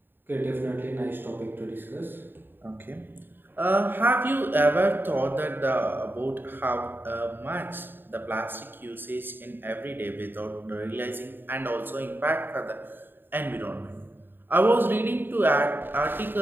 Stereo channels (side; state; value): left; late; 0.096 ms